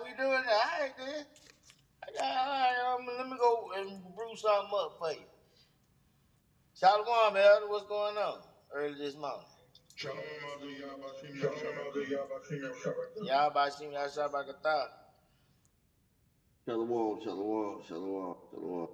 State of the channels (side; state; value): both; identical; correlation 1.00